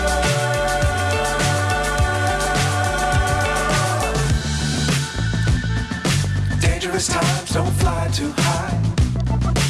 Times don't fly too high.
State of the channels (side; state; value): both; identical; correlation 1.00